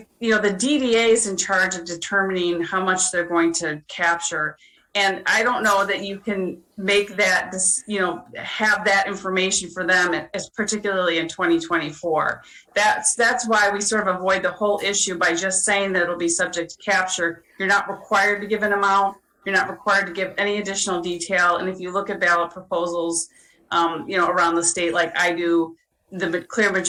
the DDA is in charge of determining how much they're going to capture, and I don't know that you can make that have that information for them, as particularly in 2024. That's why we sort of avoid the whole issue by just saying that it'll be subject to capture. You're not required to give an amount. You're not required to give any additional detail. And if you look at ballot proposals, around the state, like I do, the clear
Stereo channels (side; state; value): both; identical; correlation 1.00